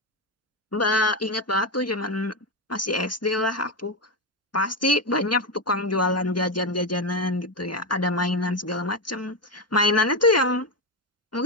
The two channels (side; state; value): both; normal; correlation 0.11